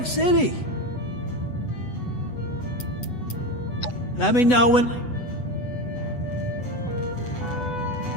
City? Let me know when... Have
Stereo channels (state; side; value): late; right; 8.0 ms